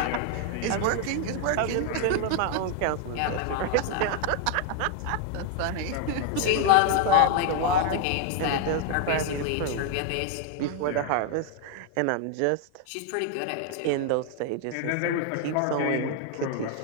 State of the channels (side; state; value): both; different; correlation 0.00